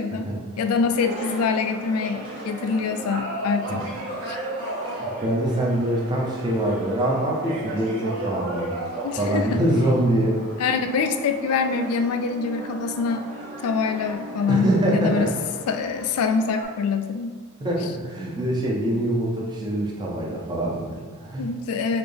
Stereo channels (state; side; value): normal; both; correlation 0.39